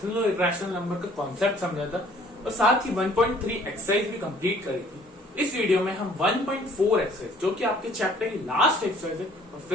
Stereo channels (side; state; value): both; normal; correlation 0.56